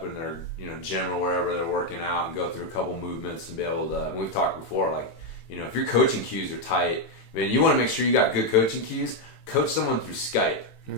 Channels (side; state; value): right; late; 18 ms